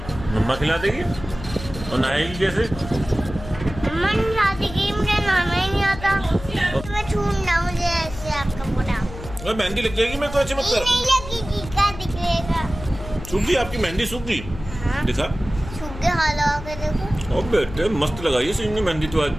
मम्मा खिला देगी? और नहाएगी कैसे? मम्मा खिला देगी, मुझे नहाना ही नहीं आता। मैं छूना, मुझे ऐसे आपका पूरा। अरे मेहंदी लग जाएगी, मैं तो ऐसे मत ये कर। नहीं लगेगी, क्या दिखेगा? सूख गई आपकी मेहंदी, सूख गई। हाँ। दिखा। सूख के हाल लगा के देखो। ओ बेटे मस्त लगाई है सीनू ने मेहंदी तो आज।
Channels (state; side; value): noise; left; hum, 12 dB below the sound